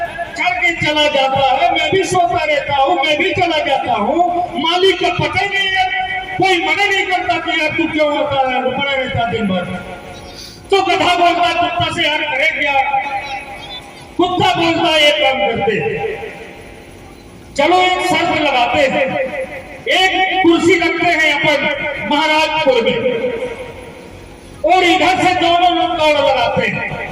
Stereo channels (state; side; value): identical; both; correlation 1.00